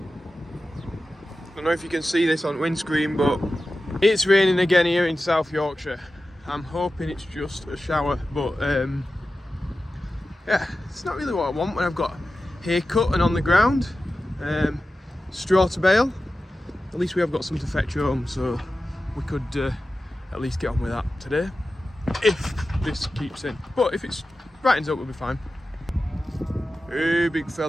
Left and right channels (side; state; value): both; normal; correlation 0.94